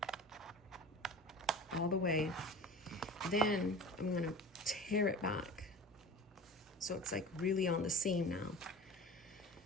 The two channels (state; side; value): normal; both; correlation 0.36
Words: All the way. Then I'm gonna tear it back. So it's like really on the seam now.